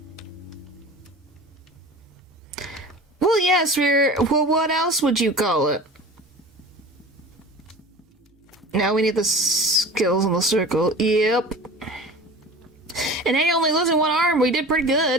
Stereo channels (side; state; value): both; normal; correlation 0.38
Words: Well, yes, well, what else would you call it? Now we need the skills in the circle. Yep. And hey, only losing one arm, we did pretty